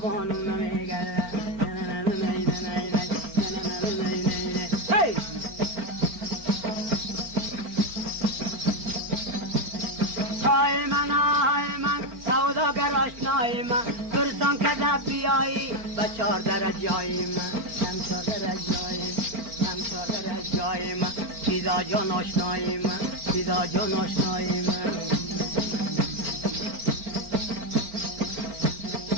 نمیگرده های من سوداگر آشنای من برسان که در بیایی و 4 درجای من 4 درجای من سیدا جان آشنای من سیدا جان آشنای من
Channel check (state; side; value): late; left; 4.4 ms